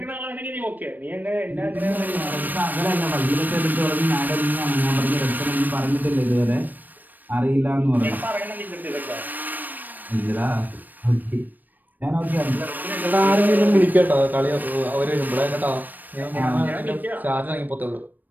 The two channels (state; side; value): late; left; 0.088 ms